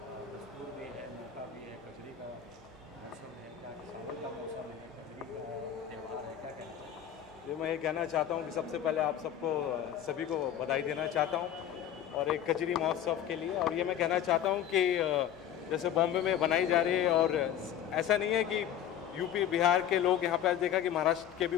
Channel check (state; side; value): quieter; right; 10.1 dB